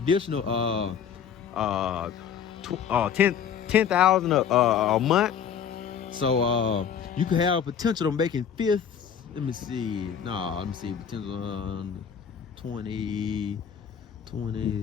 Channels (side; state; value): right; quieter; 7.9 dB